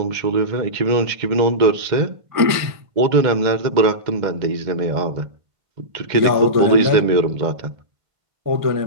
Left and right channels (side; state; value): left; late; 1.5 ms